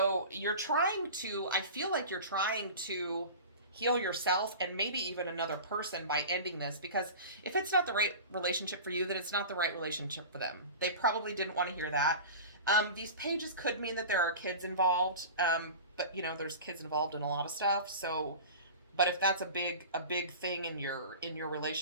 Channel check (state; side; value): inverted; both; correlation -0.34